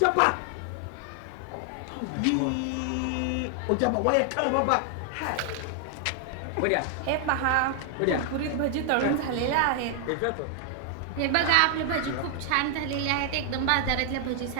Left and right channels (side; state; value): both; different; correlation 0.00